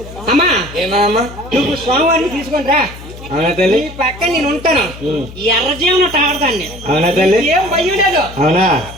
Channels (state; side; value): noise; left; hum, 15 dB below the sound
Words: అమ్మా ఏమమ్మా నువ్వు స్వామివారిని తీసుకొని రా. అవునా తల్లి? ఈ పక్క నేను ఉంటాను. ఎర్రజీవన తాడతాను నేను. అవునా తల్లి? ఏం భయం లేదు. అవునా?